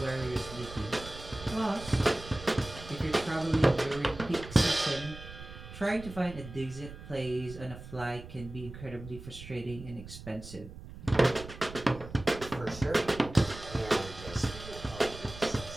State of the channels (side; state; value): right; noise; rumble, 14 dB below the sound